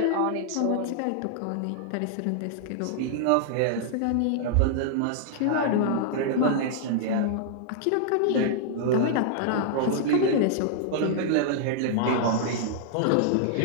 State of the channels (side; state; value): both; different; correlation -0.01